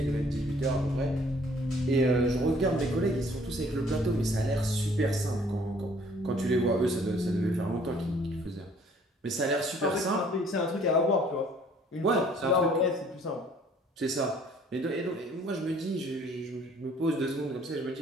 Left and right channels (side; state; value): both; normal; correlation 0.58